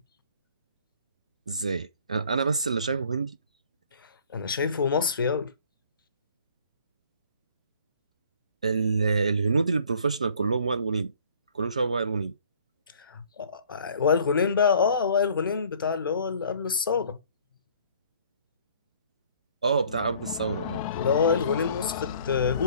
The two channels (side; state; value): both; inverted; correlation -0.55